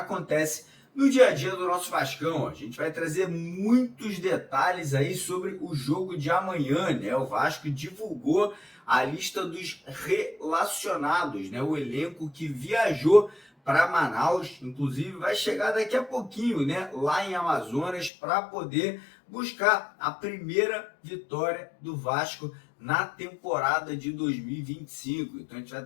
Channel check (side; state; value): right; drops out; at 18.1 s